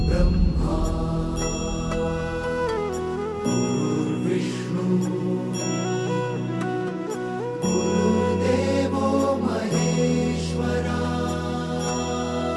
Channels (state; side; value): identical; both; correlation 1.00